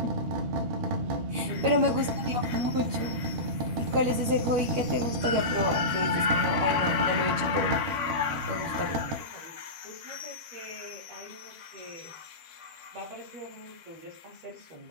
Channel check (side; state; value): left; late; 12 ms